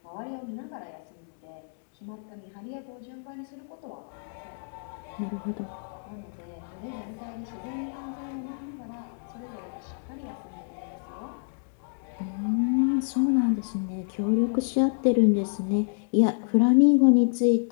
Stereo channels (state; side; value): silent; right; digital silence